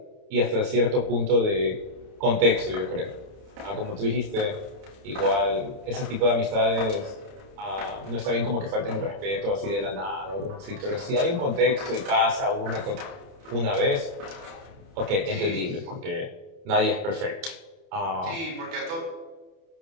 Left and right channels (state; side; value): late; left; 30 ms